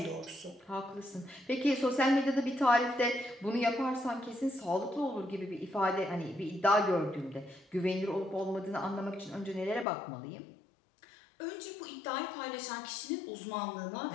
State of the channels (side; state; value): right; drops out; at 9.9 s